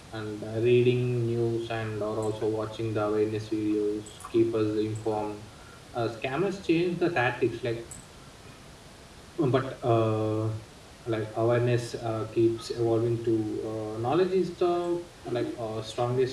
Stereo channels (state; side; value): identical; both; correlation 1.00